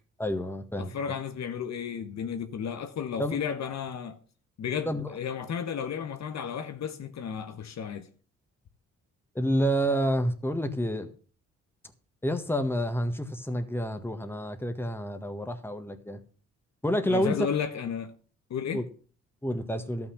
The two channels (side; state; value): both; normal; correlation 0.62